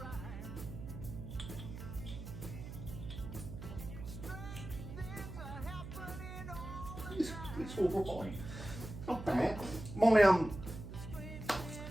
It's all right. Not bad. My I'll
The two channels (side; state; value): right; noise; hum, 9 dB below the sound